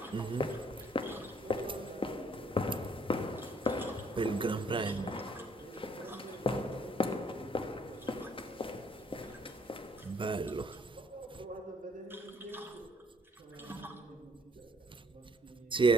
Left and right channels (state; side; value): normal; both; correlation 0.64